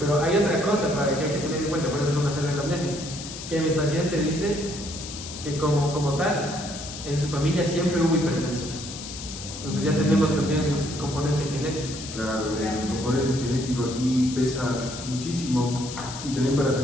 hay otra cosa para que hay que tener en cuenta, por eso es una serie de anamnesis, que mi paciente dice que como tal, en su familia siempre hubo hipertensión. Entonces ya tenemos también el componente genético. Claro, el componente genético aquí pesa muchísimo y también para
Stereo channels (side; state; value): left; noise; hiss, 10 dB below the sound